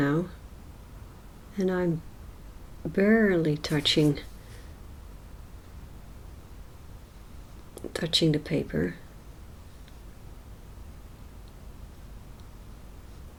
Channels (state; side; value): identical; both; correlation 1.00